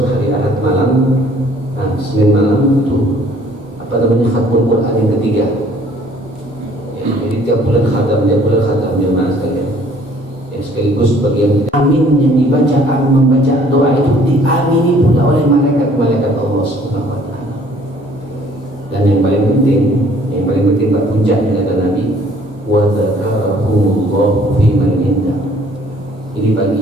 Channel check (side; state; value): both; normal; correlation 0.57